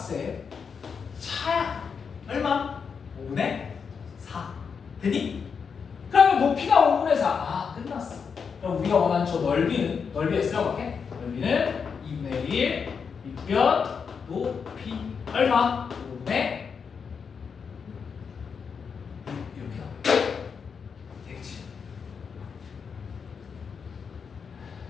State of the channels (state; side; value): quieter; right; 6.1 dB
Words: 차야. 얼마? 5분의 4. 되니? 그러면 높이가 5분의 4. 아 끝났어. 그럼 우리가 원하는 저 넓이는 넓이에 쓰려볼게. 넓이는 2분의 1 밑변 높이 얼마? 5분의 6 이렇게 나와. 되겠지?